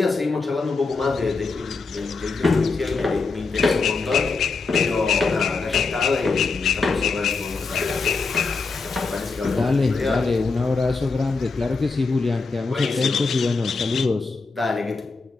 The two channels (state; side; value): quieter; right; 4.2 dB